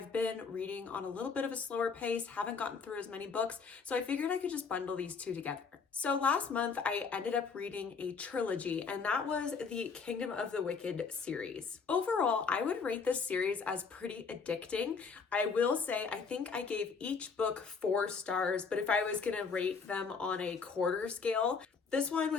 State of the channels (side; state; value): right; quieter; 5.3 dB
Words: been reading on a little bit of a slower pace, haven't gotten through as many books, so I figured I could just bundle these two together. So last month I ended up reading a trilogy, and that was the Kingdom of the Wicked series. Overall, I would rate this series as pretty addicting. I will say I think I gave each book 4 stars, but if I was gonna rate them on a quarter scale, this one